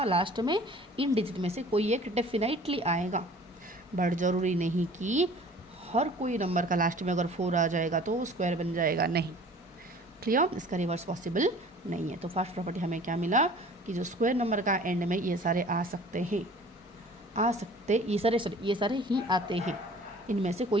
लास्ट में इन डिजिट में से कोई एक डेफिनेटली आएगा, बट ज़रूरी नहीं कि हर कोई नंबर का लास्ट में अगर 4 आ जाएगा तो वो स्क्वायर बन जाएगा, नहीं। क्लियर, इसका रिवर्स पॉसिबल नहीं है। तो फर्स्ट प्रॉपर्टी हमें क्या मिला कि जो स्क्वायर नंबर का एंड में ये सारे आ सकते हैं, ये सारे ही आते हैं, इनमें से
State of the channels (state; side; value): normal; both; correlation 0.48